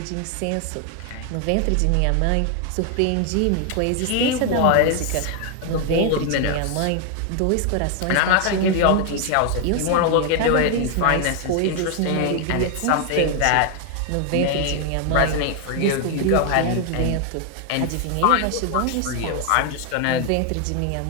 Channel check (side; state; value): both; different; correlation 0.00